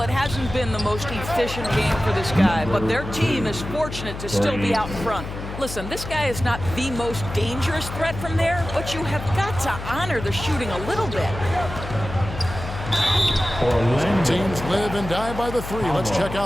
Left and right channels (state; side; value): noise; left; hum, 9 dB below the sound